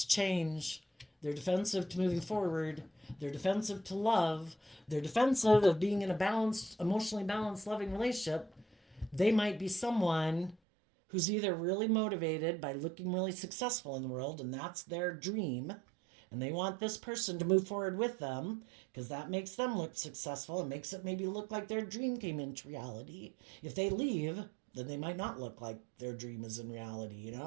change. They're defensive to moving forward. They're defensive to love. They're defensive of being in a balanced, emotionally balanced, loving relationship. They might be someone who's either really motivated by looking really successful in the world, and that's their dream, and they want this person to move forward with them because that makes them look successful and makes it maybe look like their dream came into reality. If they leave, then they might not look like their dream is in reality,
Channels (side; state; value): left; drops out; at 10.6 s